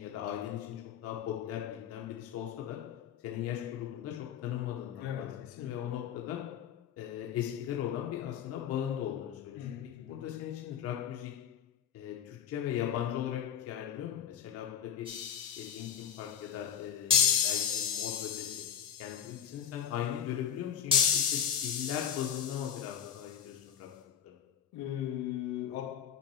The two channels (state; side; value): quieter; right; 8.8 dB